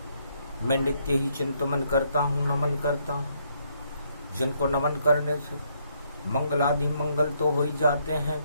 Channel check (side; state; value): both; inverted; correlation -0.72